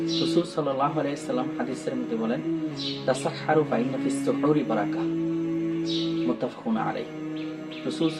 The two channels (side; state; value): both; identical; correlation 1.00